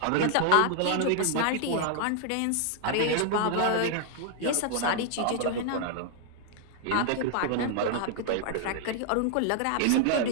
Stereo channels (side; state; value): both; different; correlation 0.00